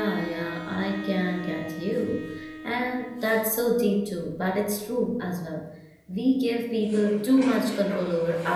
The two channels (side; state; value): both; identical; correlation 1.00